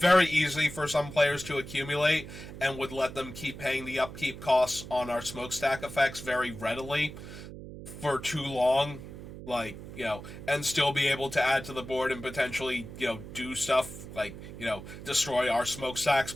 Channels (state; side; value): noise; right; hum, 12 dB below the sound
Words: easy for some players to accumulate, and would let them keep paying the upkeep costs on our smokestack effects very readily for too long. Like, and still be able to add to the board and potentially, do stuff like, destroy our smokestacks